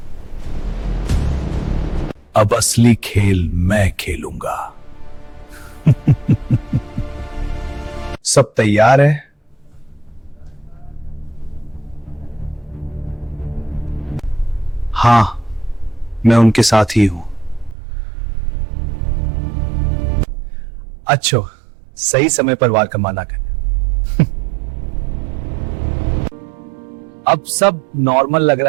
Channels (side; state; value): left; drops out; at 17.8 s